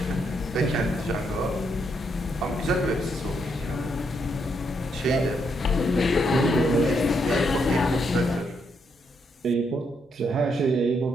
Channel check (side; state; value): both; normal; correlation 0.77